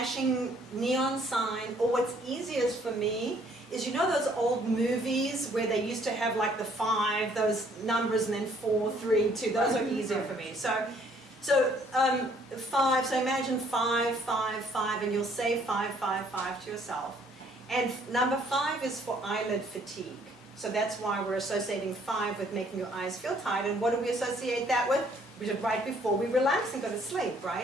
neon sign, or what's easiest for me is those old movies where they used to have like the 5, those numbers, and then 4, 3, 2. Those are easier for me. So 5. So imagine 5, 5, 5, and you'll say 5, 5, 5 to yourself. And number 5 is for eyelid fatigue. So that's why we're associating 5 with making your eyes feel tired. And what do we associate that with? We did right before we relax and go to sleep,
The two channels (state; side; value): normal; both; correlation 0.63